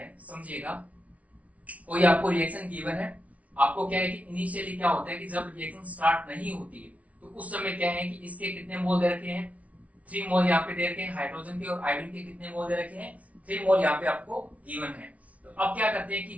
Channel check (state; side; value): late; left; 0.067 ms